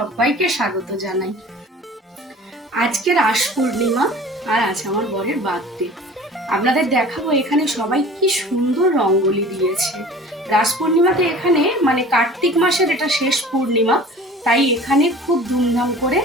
স্বাগত জানাই। আজকে রাস পূর্ণিমা আর আছে আমার বরের বার্থডে। আপনাদের দেখাবো এখানে সবাই কি সুন্দর রঙ্গোলি দিয়েছে। রাস পূর্ণিমাতে এখানে মানে কার্তিক মাসের এটা শেষ পূর্ণিমা, তাই এখানে খুব ধুমধাম করে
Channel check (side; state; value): both; normal; correlation 0.43